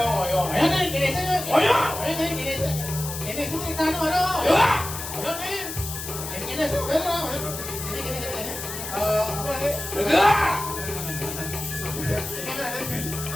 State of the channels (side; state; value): left; noise; hiss, 8 dB below the sound